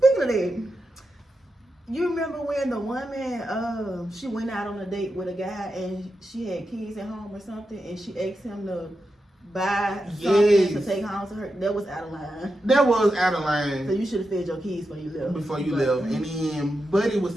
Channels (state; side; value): normal; both; correlation 0.88